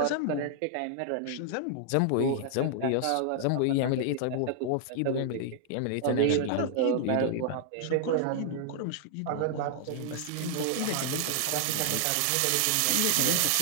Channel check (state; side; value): different; both; correlation -0.01